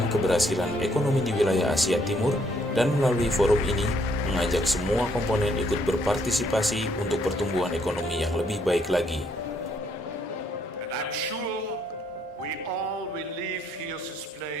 keberhasilan ekonomi di wilayah Asia Timur dan melalui forum ini mengajak semua komponen ikut berpartisipasi untuk pertumbuhan ekonomi yang lebih baik lagi. And I'm sure we all will leave here this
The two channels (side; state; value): both; normal; correlation 0.70